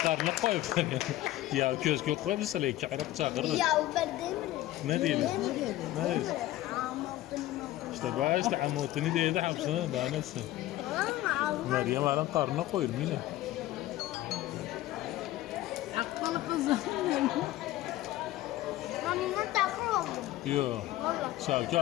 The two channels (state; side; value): quieter; right; 15.5 dB